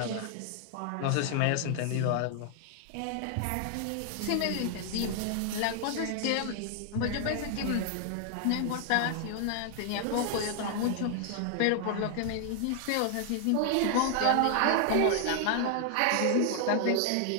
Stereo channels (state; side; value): different; both; correlation 0.00